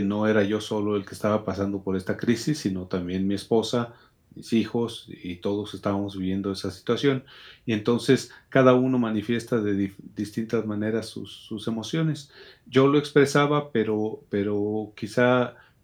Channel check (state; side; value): identical; both; correlation 1.00